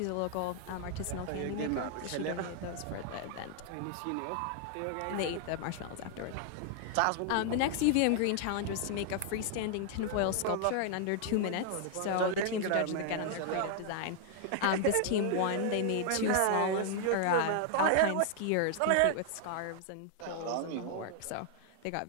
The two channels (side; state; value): both; different; correlation 0.00